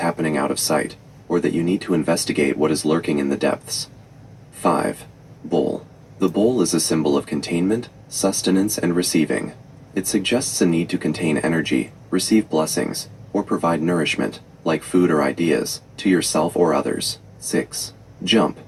out of sight, or that you need to investigate what is lurking in the depths. 5. Bowl. The bowl is a symbol of containment, sustenance, and receiving. It suggests a need to contain energy, receive blessings, or provide nourishment, like food or ideas, to yourself or others. 6. Jump.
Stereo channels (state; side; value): identical; both; correlation 1.00